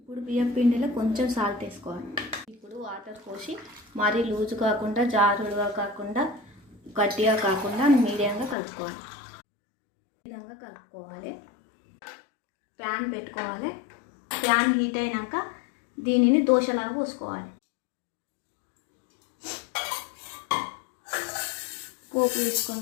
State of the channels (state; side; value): drops out; right; at 8.6 s